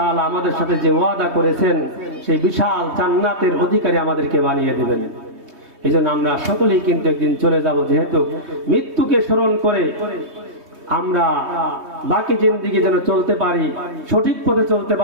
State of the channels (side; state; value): left; late; 3.2 ms